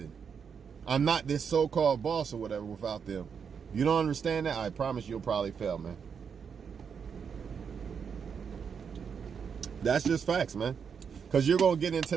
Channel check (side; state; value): left; quieter; 6.7 dB